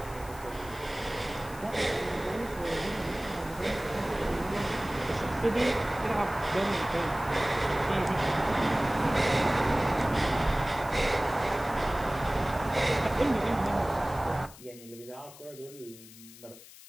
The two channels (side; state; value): left; noise; hiss, 19 dB below the sound